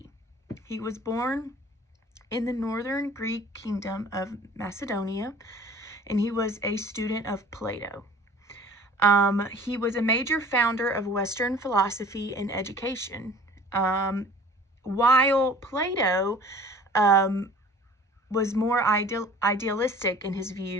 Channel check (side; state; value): both; normal; correlation 0.48